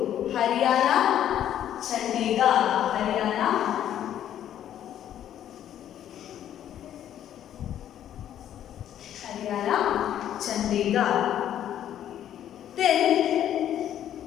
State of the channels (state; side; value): quieter; right; 10.8 dB